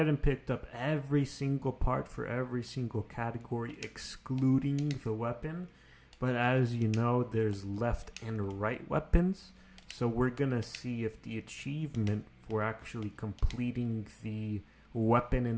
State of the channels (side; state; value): both; identical; correlation 1.00